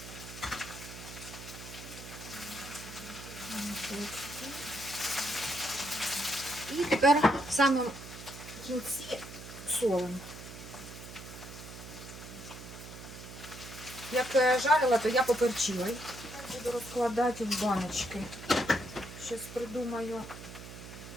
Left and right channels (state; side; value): noise; right; hum, 13 dB below the sound